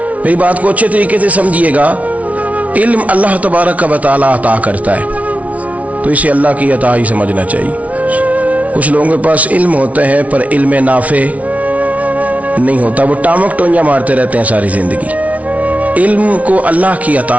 میری بات کو اچھے طریقے سے سمجھیے گا، علم اللہ تبارک و تعالی عطا کرتا ہے تو اسے اللہ کی عطا ہی سمجھنا چاہیے۔ کچھ لوگوں کے پاس علم ہوتا ہے پر علم نافع نہیں ہوتا، وہ ٹامک ٹونجا مارتے رہتے ہیں ساری زندگی۔ علم کو اللہ کی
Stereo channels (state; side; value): late; left; 0.068 ms